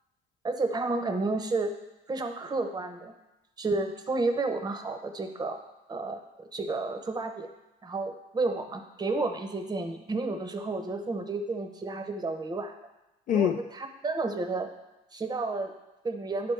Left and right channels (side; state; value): both; normal; correlation 0.64